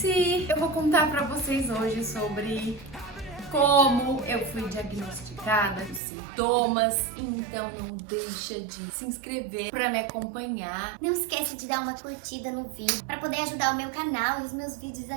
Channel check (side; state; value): left; drops out; at 6.0 s